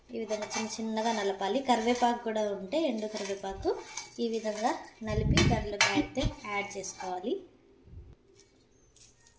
ఈ విధంగా చిన్న చిన్నగా నలపాలి. కరివేపాకు కూడా ఉంటే ఎండు కరివేపాకు ఈ విధంగా నలిపి దాంట్లోకి అయితే యాడ్ చేసుకోవాలి.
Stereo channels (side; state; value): both; identical; correlation 1.00